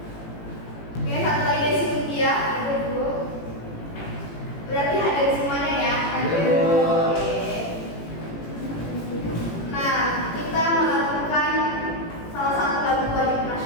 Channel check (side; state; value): right; late; 18 ms